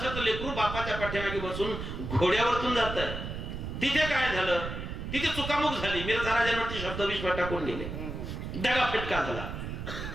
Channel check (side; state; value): right; noise; rumble, 6 dB below the sound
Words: लेकरू बापाच्या पाठीमागे बसून घोड्यावरतून जात आहे. तिथे काय झालं? तिथे चुकामुक झाली. मिर्झा राजांवरती शब्दविष टाकून गेले, दगा फटका झाला.